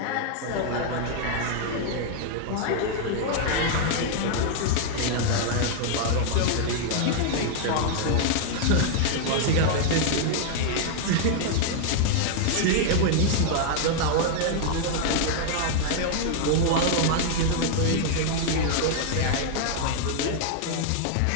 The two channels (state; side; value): different; both; correlation 0.00